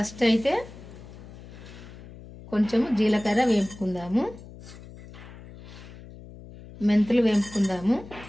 అయితే కొంచెము జీలకర్ర వేపుకుందాము, మెంతులు వేపుకుందాము,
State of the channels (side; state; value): left; noise; hum, 17 dB below the sound